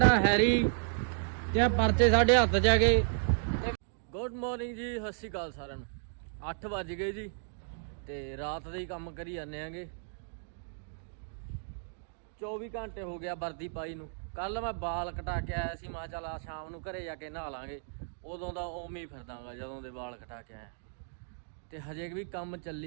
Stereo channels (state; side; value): silent; left; digital silence